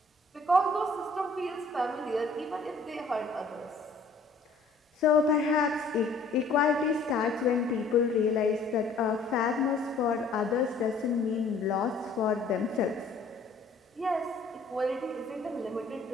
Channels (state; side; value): quieter; right; 3.7 dB